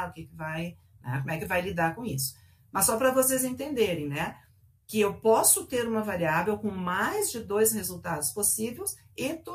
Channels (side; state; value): both; identical; correlation 1.00